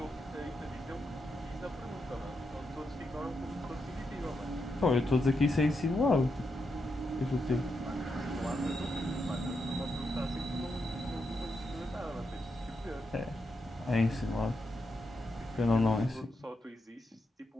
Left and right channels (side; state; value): both; normal; correlation 0.84